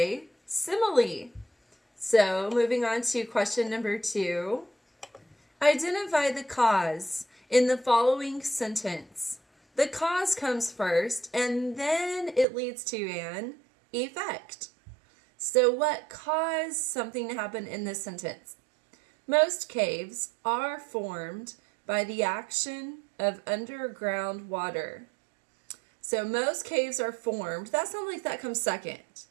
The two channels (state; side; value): drops out; left; at 12.5 s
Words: simile. So moving on to question number 2. Identify the cause in the following sentence. The cause comes first, and then it leads to an effect. So what caused something to happen in this sentence? Most caves are formed by the action of underground water. So most caves are formed. That sounds like that comes second.